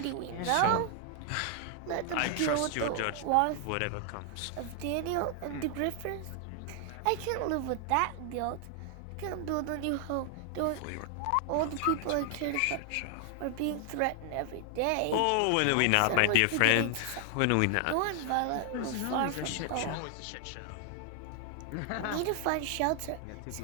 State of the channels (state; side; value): different; both; correlation 0.00